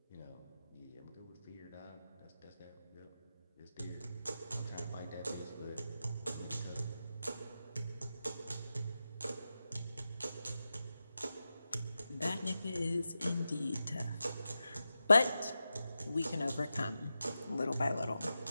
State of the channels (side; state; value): both; inverted; correlation -0.91